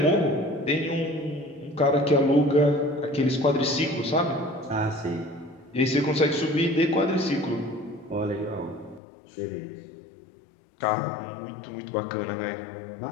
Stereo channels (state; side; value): drops out; right; at 9.0 s